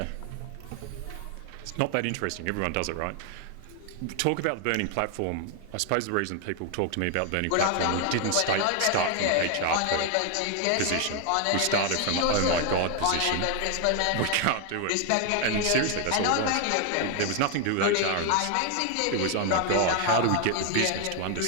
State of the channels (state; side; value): different; both; correlation 0.01